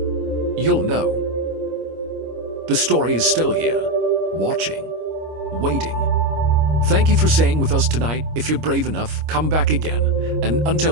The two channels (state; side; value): late; left; 25 ms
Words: you'll know. The story is still here, watching, waiting. Thank you for staying with us tonight. If you're brave enough, come back again. And